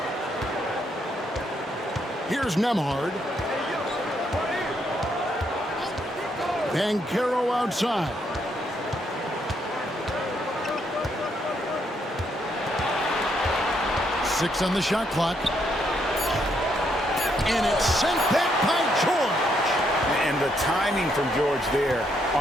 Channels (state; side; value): normal; both; correlation 0.75